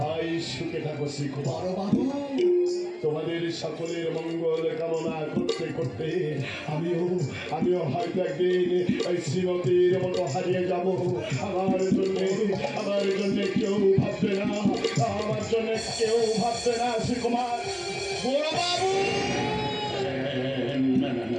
সুখে থাকো শ্রীকুমার বাবু। তোমাদের সকলের মঙ্গল কামনা করতে করতে আমিও হয়তো একদিন ওই শ্রীমতীর মতো হারিয়ে যাব। আমার জন্য কেউ ভাববে না, আমার জন্য কেউ ভাববে না শ্রীকুমার। বড় বাবু,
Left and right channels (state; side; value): identical; both; correlation 1.00